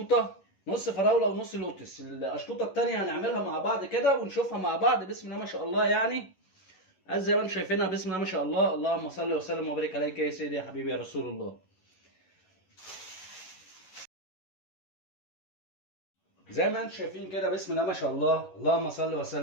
نص فراوله ونص لوتس. الاشطوطه التانيه هنعملها مع بعض كده ونشوفها مع بعض. بسم الله ما شاء الله، يعني زي ما انتم شايفينها. بسم الله ما شاء الله، اللهم صل وسلم وبارك عليك يا سيدي يا حبيبي يا رسول الله. زي ما انتم شايفين كده بسم الله ما شاء الله، اللهم صل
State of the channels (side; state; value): right; late; 11 ms